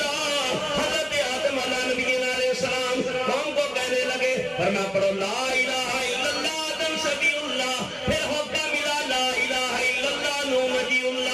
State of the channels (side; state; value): both; identical; correlation 1.00